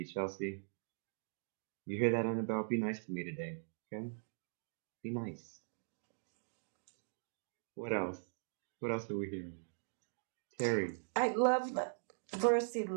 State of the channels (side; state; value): left; silent; digital silence